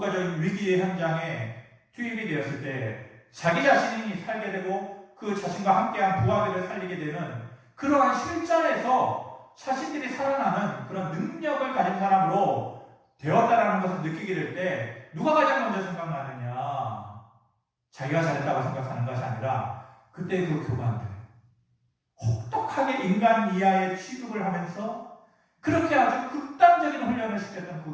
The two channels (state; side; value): identical; both; correlation 1.00